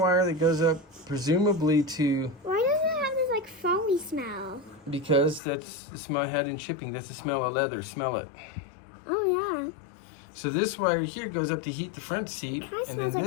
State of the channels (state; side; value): drops out; right; at 5.4 s